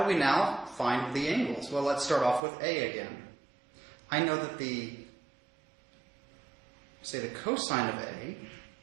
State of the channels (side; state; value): left; drops out; at 2.4 s